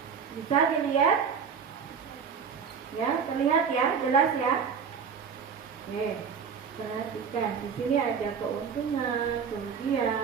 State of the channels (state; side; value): quieter; left; 6.5 dB